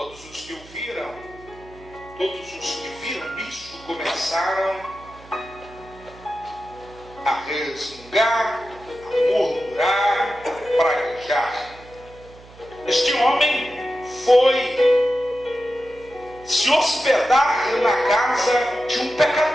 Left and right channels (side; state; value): right; noise; hum, 22 dB below the sound